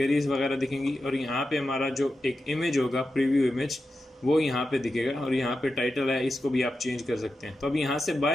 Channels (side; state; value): both; normal; correlation 0.90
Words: वगैरह दिखेंगी और यहाँ पे हमारा जो एक इमेज होगा प्रीव्यू इमेज वो यहाँ पे दिखेगा और यहाँ पे टाइटल है, इसको भी आप चेंज कर सकते हैं। तो अब यहाँ से